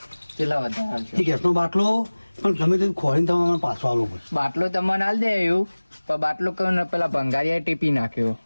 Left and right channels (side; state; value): both; inverted; correlation -1.00